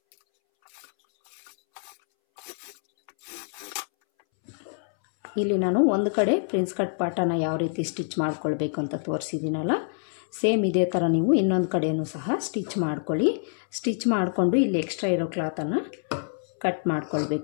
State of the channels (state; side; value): silent; right; 61 dB below the other